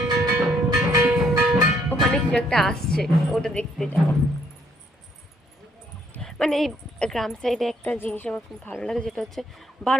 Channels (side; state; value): both; normal; correlation 0.68